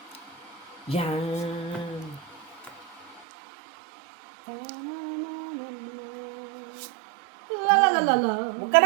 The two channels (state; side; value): drops out; left; at 3.2 s